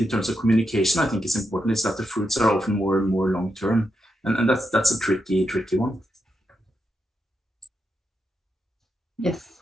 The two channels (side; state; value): both; normal; correlation 0.85